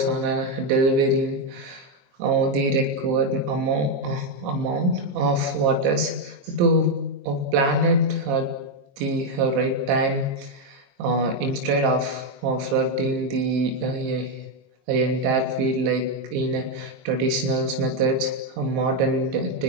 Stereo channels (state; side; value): late; left; 22 ms